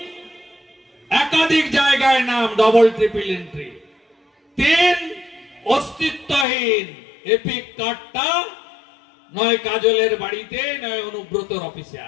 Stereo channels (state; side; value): drops out; right; at 6.5 s